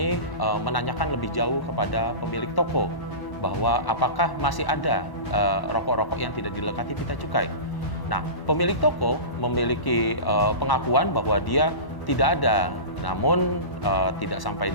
menanyakan lebih jauh kepada pemilik toko bahwa apakah masih ada rokok-rokok yang tidak dilekati pita cukai. Nah, pemilik toko memiliki pengakuan bahwa dia tidak ada. Namun tidak sampai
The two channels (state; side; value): late; right; 1.1 ms